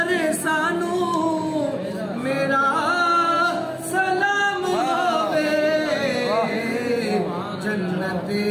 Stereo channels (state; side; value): identical; both; correlation 1.00